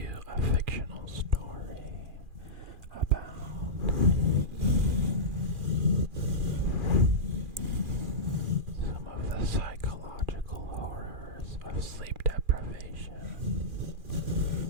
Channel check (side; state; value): left; late; 2.4 ms